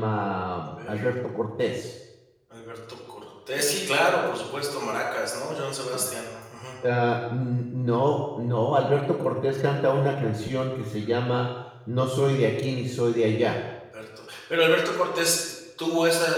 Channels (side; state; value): both; identical; correlation 1.00